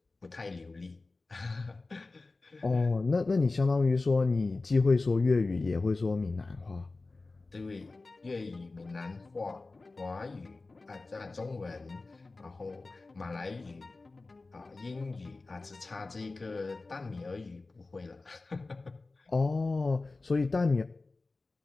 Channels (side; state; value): right; quieter; 3.5 dB